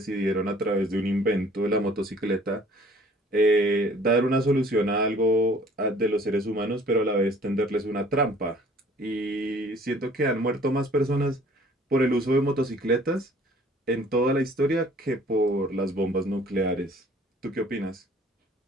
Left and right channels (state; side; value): normal; both; correlation 0.54